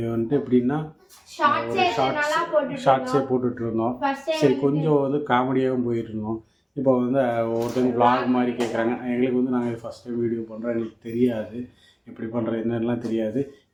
வந்துட்டு எப்படின்னா ஒரு ஷார்ட்ஸே போட்டுட்ருந்தோம். சரி, கொஞ்சம் வந்து காமெடியாகவும் போயிட்டுருந்தோம். இப்போ வந்து ஒருத்தவங்க vlog மாதிரி கேட்குறாங்க. எங்களுக்கு வந்து நாங்கள் ஃபஸ்ட் டைம் வீடியோ பண்ணுறோம், எங்களுக்கு தெரியாது எப்படி பண்ணுறது என்னெல்லாம் தெரியாது.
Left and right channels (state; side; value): identical; both; correlation 1.00